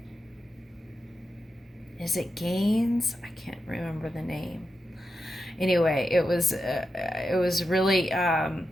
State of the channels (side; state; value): both; normal; correlation 0.88